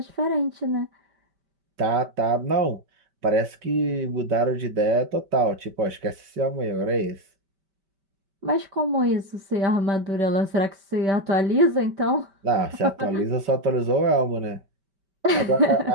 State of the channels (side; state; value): left; late; 5.2 ms